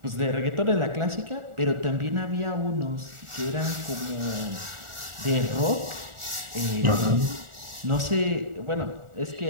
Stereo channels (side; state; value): left; late; 1.4 ms